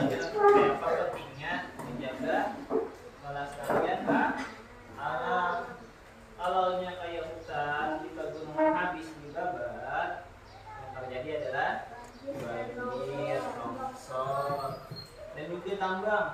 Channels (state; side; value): identical; both; correlation 1.00